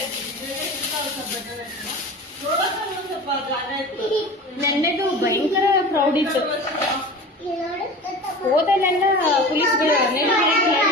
ನನ್ನದು ಭಯಂಕರ ಪ್ರೌಡ್ ಇತ್ತು. ಹೋದಲ್ಲೆಲ್ಲ ಪೊಲೀಸ್ಗಳು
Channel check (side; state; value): both; normal; correlation 0.35